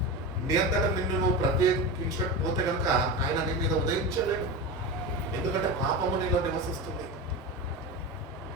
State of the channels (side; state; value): both; normal; correlation 0.23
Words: నీ అంతటా నిన్ను నువ్వు ప్రత్యేకించకపోతే కనుక ఆయన నీ మీద ఉదయించలేడు. ఎందుకంటే పాపము నీలో నివసిస్తుంది.